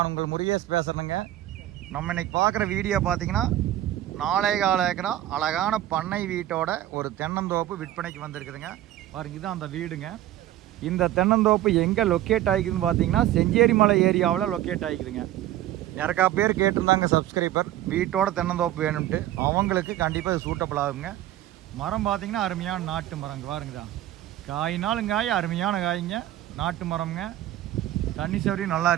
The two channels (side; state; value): left; quieter; 13.7 dB